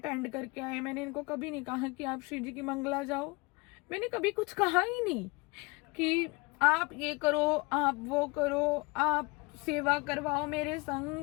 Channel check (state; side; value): quieter; right; 26.9 dB